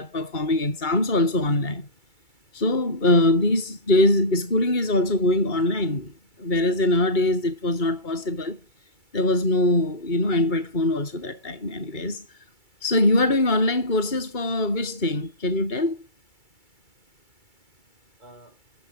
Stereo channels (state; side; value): late; right; 2.3 ms